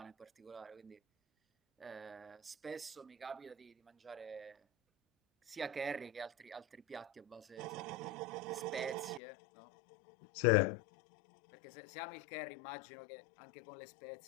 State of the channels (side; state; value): right; drops out; at 9.2 s